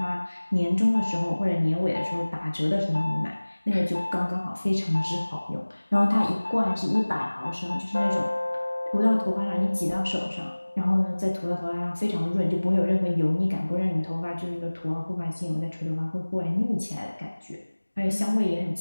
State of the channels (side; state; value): both; inverted; correlation -1.00